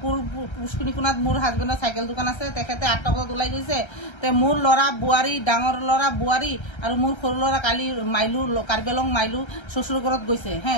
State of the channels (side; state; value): right; late; 1.3 ms